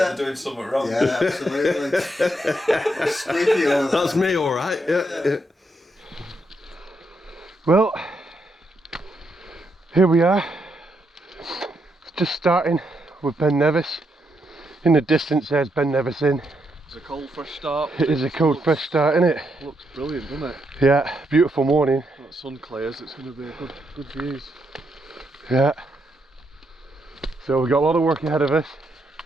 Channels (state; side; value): normal; both; correlation 0.79